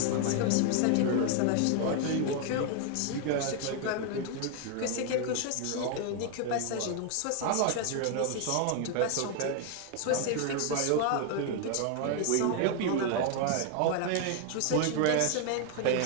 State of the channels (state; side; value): different; both; correlation 0.00